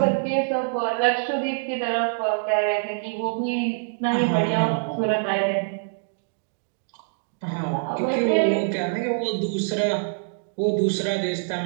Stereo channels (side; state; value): left; silent; digital silence